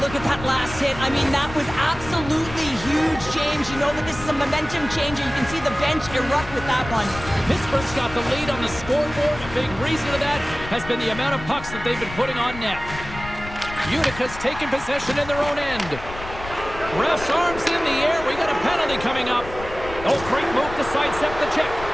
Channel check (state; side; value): noise; left; rumble, 12 dB below the sound